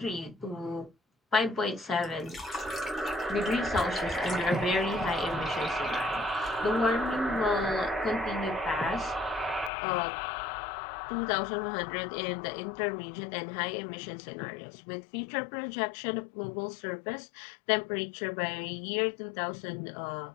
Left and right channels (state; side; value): drops out; right; at 9.7 s